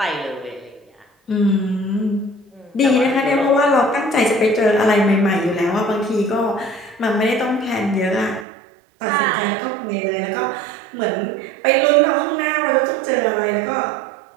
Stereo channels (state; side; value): drops out; left; at 8.5 s